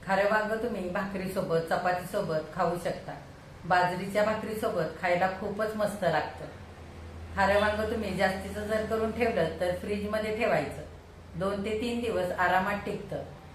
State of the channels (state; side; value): identical; both; correlation 1.00